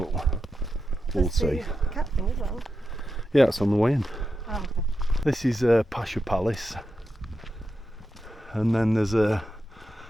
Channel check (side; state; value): both; normal; correlation 0.88